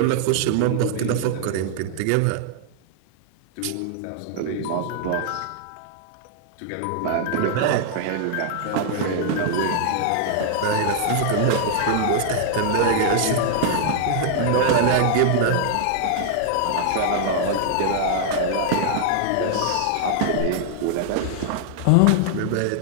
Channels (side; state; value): both; different; correlation -0.01